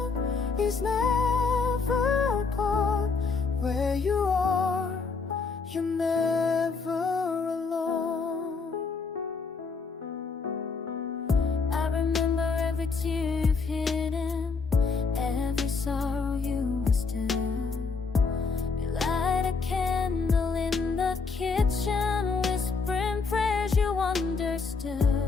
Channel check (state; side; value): quieter; right; 4.7 dB